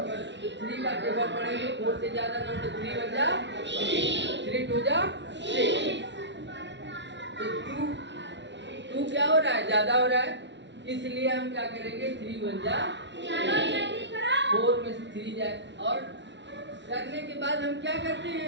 3 का टेबल पढ़ेंगे 4 से ज्यादा ना, तो 3 1 जा 3 2 जा 6, तो 2 क्या हो रहा है? ज्यादा हो रहा है, इसलिए हम क्या करेंगे? 3 1 जा 4 में से 3 जाए, और करने के बाद हम क्या करते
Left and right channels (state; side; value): late; left; 0.52 ms